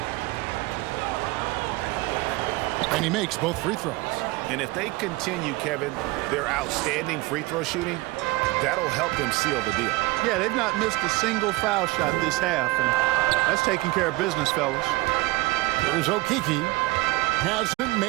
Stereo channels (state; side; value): quieter; left; 21.4 dB